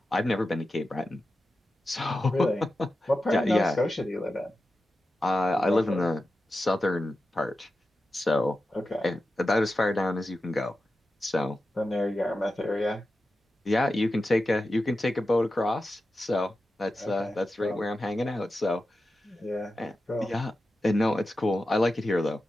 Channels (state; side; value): normal; both; correlation 0.92